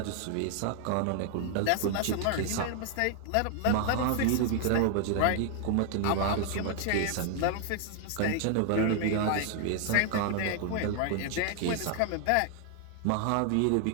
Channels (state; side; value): different; both; correlation 0.00